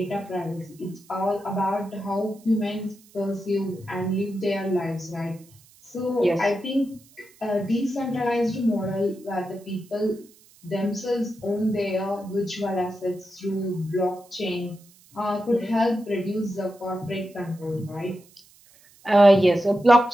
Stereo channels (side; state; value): right; noise; hiss, 27 dB below the sound